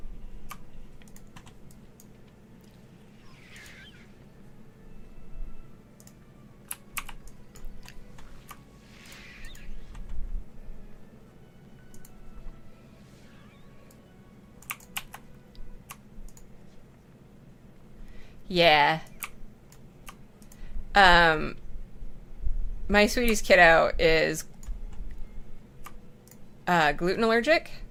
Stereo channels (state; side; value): identical; both; correlation 1.00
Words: Yeah. My sweetie's kiddo is gluten allergic.